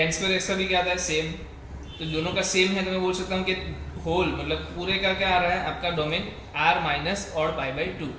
square x का भी क्या आता है, सेम। तो दोनों का सेम है, तो मैं बोल सकता हूँ कि होल मतलब पूरे का क्या आ रहा है आपका domain r minus odd pi by two.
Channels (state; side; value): identical; both; correlation 1.00